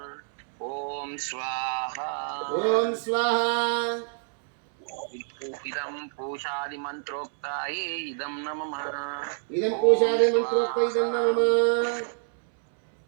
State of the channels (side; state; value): left; silent; 60 dB below the other